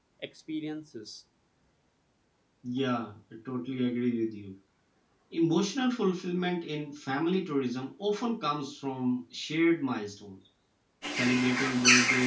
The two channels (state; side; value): identical; both; correlation 1.00